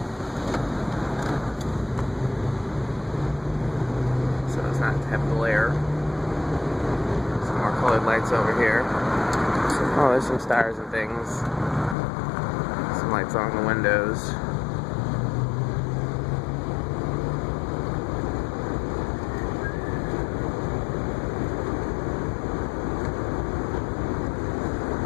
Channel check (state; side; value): drops out; right; at 12.0 s